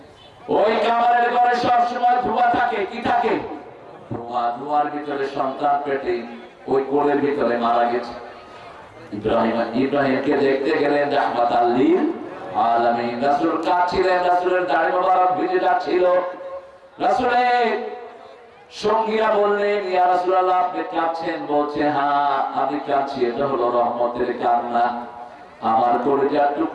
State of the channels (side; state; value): both; identical; correlation 1.00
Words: ওই কামারের ঘরে সবসময় ধোঁয়া থাকে। কি থাকে? ধোঁয়া। ধোঁয়ার ভিতরে সন্তান পেটে ওই কোলের ভিতরে মারা গেছে। ইব্রাহিমকে দেখতে গেলেন রাহমাতাল লিল আলামিন। রাসূল কাঁদছিলেন, রাসূলের দাড়ি মোবারক ভিজে যাচ্ছিল। রাসূলের সঙ্গীরা বললেন, ইয়া রাসূলুল্লাহ আপনি কাঁদছেন? বলছে, হ্যাঁ আমি কাঁদছি, এটা হলো রহমতের কান্না। আমার কলিজার